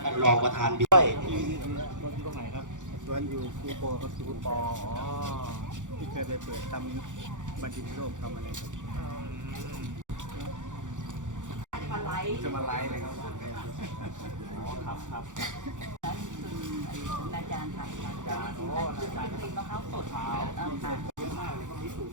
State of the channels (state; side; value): late; left; 0.86 ms